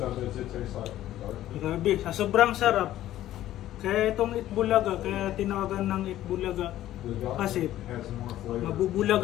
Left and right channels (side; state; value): right; quieter; 13.5 dB